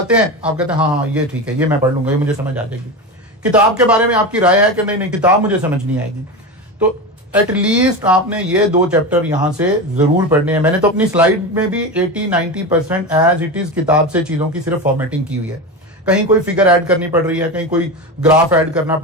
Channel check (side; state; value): both; normal; correlation 0.22